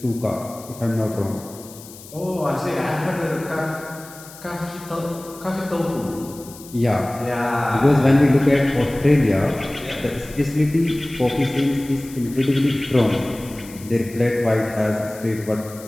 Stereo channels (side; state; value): left; noise; hiss, 18 dB below the sound